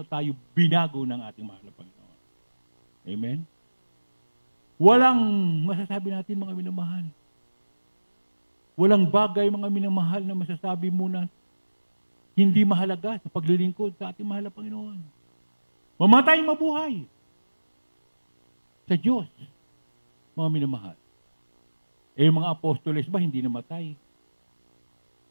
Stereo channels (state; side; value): inverted; both; correlation -1.00